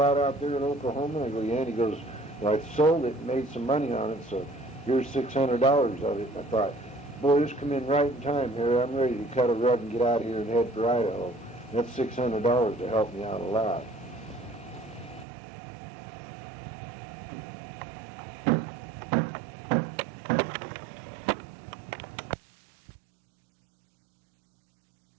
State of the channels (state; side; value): drops out; left; at 15.2 s